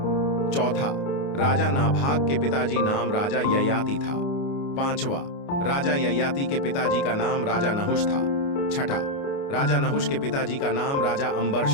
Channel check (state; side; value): late; right; 29 ms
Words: चौथा, राजा नाभाग के पिताजी नाम राजा ययाति था। पांचवा, राजा ययाति के पिताजी का नाम राजा नहुष था। छठा, राजा नहुष के पिताजी का नाम राजा